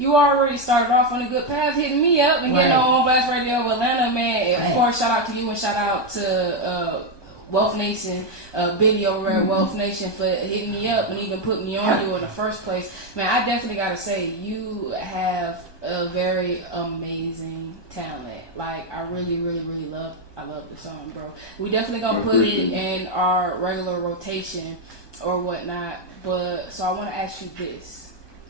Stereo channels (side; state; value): right; late; 1.2 ms